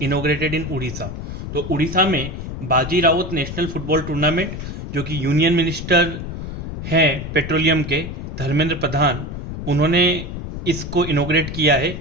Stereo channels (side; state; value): left; noise; rumble, 7 dB below the sound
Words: inaugurated in Orissa. तो उड़ीसा में बाजी राउत नेशनल फुटबॉल टूर्नामेंट, जो कि यूनियन मिनिस्टर हैं पेट्रोलियम के धर्मेंद्र प्रधान, उन्होंने इसको इनोग्रेट किया है।